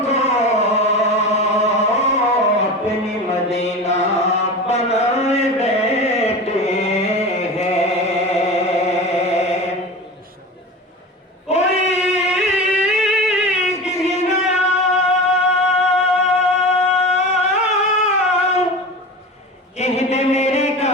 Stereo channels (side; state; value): both; normal; correlation 0.30